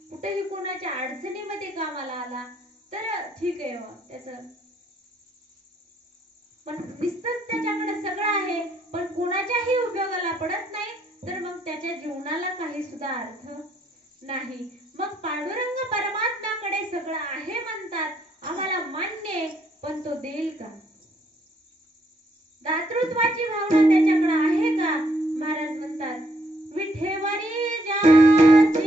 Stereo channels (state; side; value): normal; both; correlation 0.71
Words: कुठेही कोणाच्या अडचणीमध्ये कामाला आला तर ठीक आहे त्याचं. पण नुसतंच त्याच्याकडे सगळं आहे पण कोणाच्याही उपयोगाला पडत नाही, तर मग त्याच्या जीवनाला काही सुद्धा अर्थ नाही. मग पांडुरंग परमात्म्याकडे सगळं आहे म्हणतात, आम्हाला मान्य, पण तो देईल का? दातृत्वाची भावना त्याच्याकडे आहे का? महाराज म्हणतात, विठेवरी